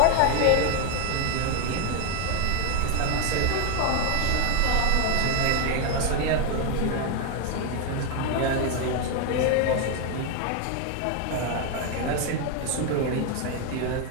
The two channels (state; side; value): different; both; correlation 0.01